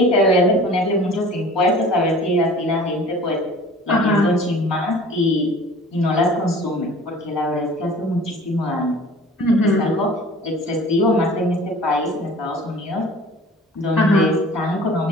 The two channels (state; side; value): normal; both; correlation 0.45